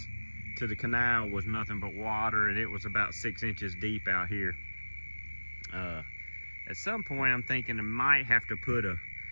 to the canal was nothing but water, and it was about 6 inches deep out here. At some point, I'm thinking I might have to put a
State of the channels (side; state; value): both; inverted; correlation -1.00